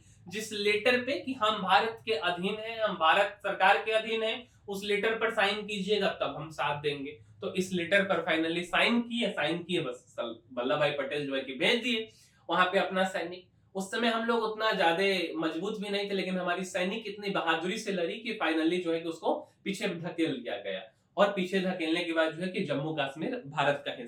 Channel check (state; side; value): identical; both; correlation 1.00